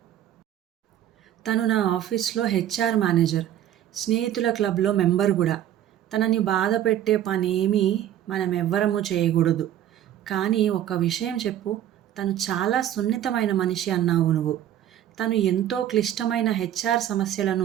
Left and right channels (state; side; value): quieter; left; 11.5 dB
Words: తను నా ఆఫీస్లో హెచ్ఆర్ మేనేజర్, స్నేహితుల క్లబ్లో మెంబర్ కూడా. తనని బాధ పెట్టే పనేమీ మనమెవ్వరము చేయకూడదు. కానీ ఒక్క విషయం చెప్పు, తను చాలా సున్నితమైన మనిషి అన్నావు నువ్వు. తను ఎంతో క్లిష్టమైన హెచ్ఆర్